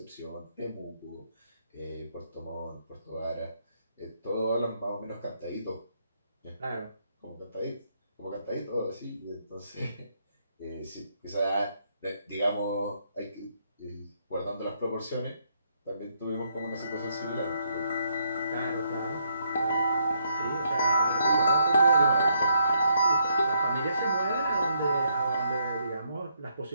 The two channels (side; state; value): both; inverted; correlation -0.74